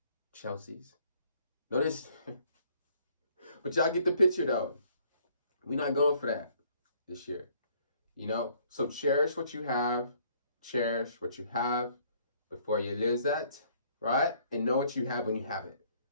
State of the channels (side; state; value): both; inverted; correlation -0.62